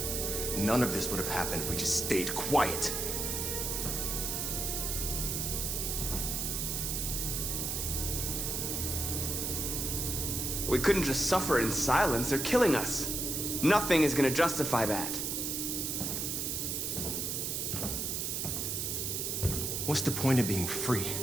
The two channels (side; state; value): right; noise; hiss, 1 dB below the sound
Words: None of this would have happened if we just stayed quiet. We couldn't just suffer in silence. They're killing us. Nothing is gonna justify that. What's the point of being free